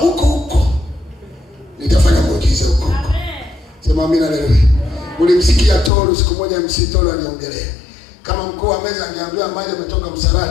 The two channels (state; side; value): drops out; right; at 5.9 s